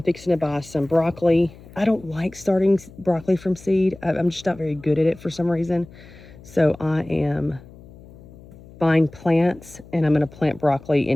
fixing to buy some broccoli. I don't like starting broccoli from seed. I'm just not very good at it for some reason. So I am buying plants, and I'm going to plant broccoli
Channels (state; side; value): noise; left; hum, 20 dB below the sound